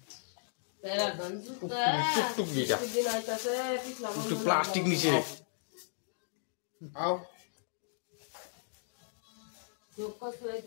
প্যারাগন জুতা টুকটুক দিটা একটু প্লাস্টিক নিচে আও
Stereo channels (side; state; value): right; silent; digital silence